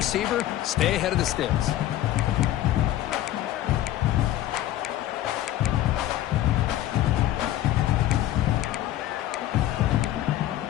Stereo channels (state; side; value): quieter; right; 13.5 dB